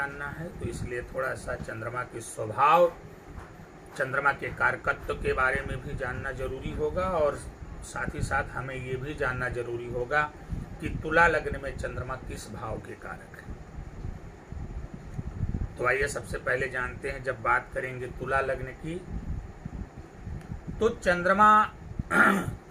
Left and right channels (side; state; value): both; identical; correlation 1.00